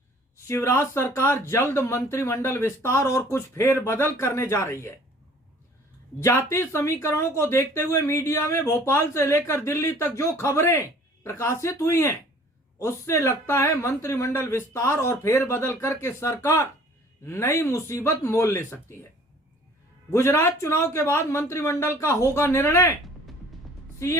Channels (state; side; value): normal; both; correlation 0.52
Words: शिवराज सरकार जल्द मंत्रिमंडल विस्तार और कुछ फेरबदल करने जा रही है। जाति समीकरणों को देखते हुए मीडिया में भोपाल से लेकर दिल्ली तक जो खबरें प्रकाशित हुई हैं, उससे लगता है मंत्रिमंडल विस्तार और फेरबदल करके सरकार नई मुसीबत मोल ले सकती है। गुजरात चुनाव के बाद मंत्रिमंडल का होगा निर्णय।